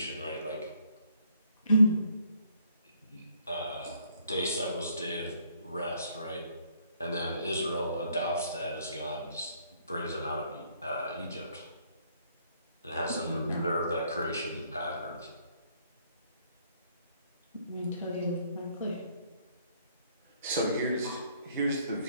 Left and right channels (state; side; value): inverted; both; correlation -0.65